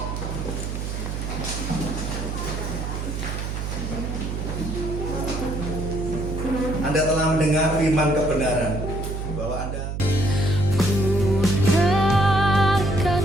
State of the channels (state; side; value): noise; right; hum, 4 dB below the sound